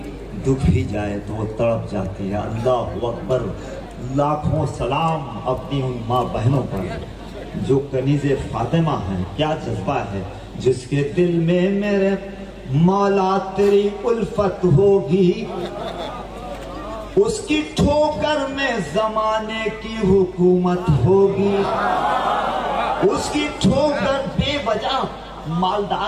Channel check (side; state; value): both; identical; correlation 1.00